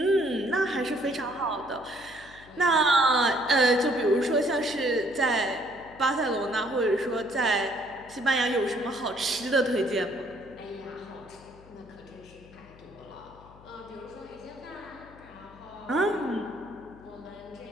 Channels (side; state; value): left; noise; hum, 22 dB below the sound